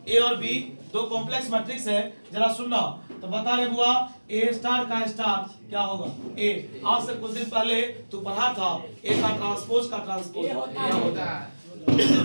ए और बी दो कॉम्प्लेक्स मैट्रिक्स है, जरा सुनना तो बता रहे बुआ, ए स्टार का स्टार क्या होगा, ए। आज से कुछ दिन पहले तू पढ़ा था ए का ट्रांसपोज का ट्रांसपोज क्या होता है,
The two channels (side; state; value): both; inverted; correlation -1.00